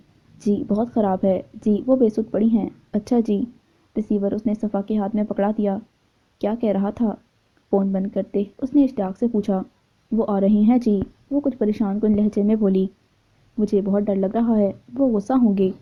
جی بہت خراب ہے۔ جی وہ بے سود پڑی ہیں۔ اچھا جی۔ ریسیور اس نے صفا کے ہاتھ میں پکڑا دیا۔ کیا کہہ رہا تھا؟ فون بند کرتے اس نے اشتیاق سے پوچھا۔ وہ آ رہی ہیں جی، وہ کچھ پریشان کن لہجے میں بولی۔ مجھے بہت ڈر لگ رہا ہے، وہ غصہ ہوں گے،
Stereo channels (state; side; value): identical; both; correlation 1.00